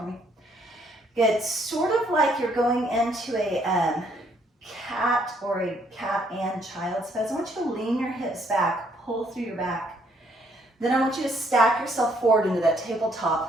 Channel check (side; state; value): both; normal; correlation 0.68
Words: me. Good. Sort of like you're going into a cat or a cat and child's pose. I want you to lean your hips back, pull through your back. Then I want you to stack yourself forward into that